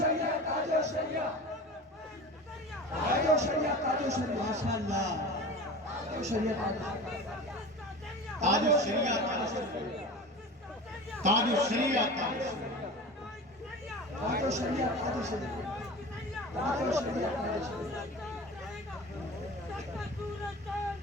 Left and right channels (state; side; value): normal; both; correlation 0.34